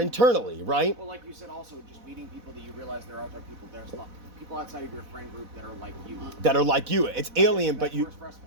internally, right? Well, like you said, also just meeting people that you realize there are other people. There's people outside of your friend group that are like you. That are like you. It's alien, but you... First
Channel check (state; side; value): late; left; 4.1 ms